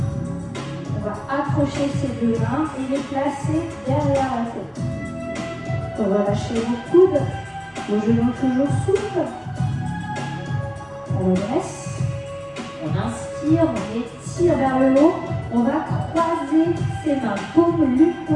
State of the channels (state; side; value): identical; both; correlation 1.00